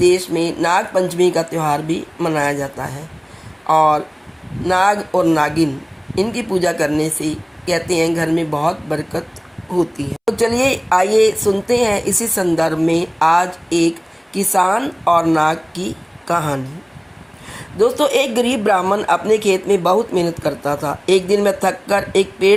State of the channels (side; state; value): both; identical; correlation 1.00